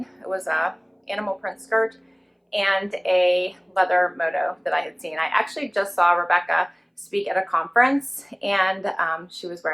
It was a animal print skirt and a leather moto that I had seen. I actually just saw Rebecca speak at a conference, and she was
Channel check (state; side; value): identical; both; correlation 1.00